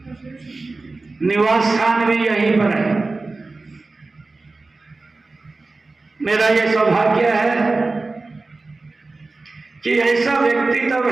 निवास स्थान भी यहीं पर है। मेरा यह सौभाग्य है कि ऐसा व्यक्ति तब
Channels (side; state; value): left; quieter; 3.5 dB